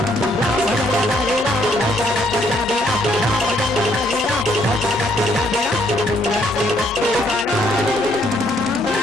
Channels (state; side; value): normal; both; correlation 0.69